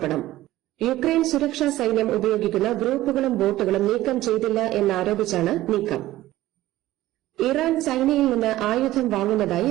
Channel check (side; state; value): left; quieter; 15.7 dB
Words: യുക്രൈൻ സുരക്ഷാ സൈന്യം ഉപയോഗിക്കുന്ന ഗ്രൂപ്പുകളും ബോട്ടുകളും നീക്കം ചെയ്തില്ല എന്നാരോപിച്ചാണ് നീക്കം. ഇറാൻ ചൈനയിൽ നിന്ന് ആയുധം വാങ്ങുന്നതായി